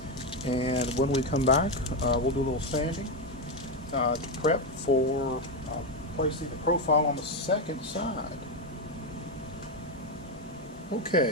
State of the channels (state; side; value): normal; both; correlation 0.08